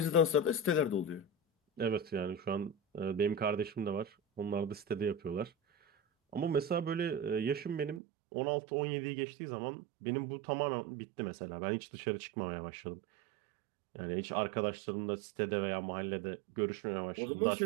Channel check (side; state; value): left; drops out; at 8.0 s